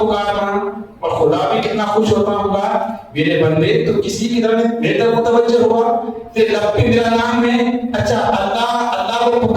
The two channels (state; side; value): identical; both; correlation 1.00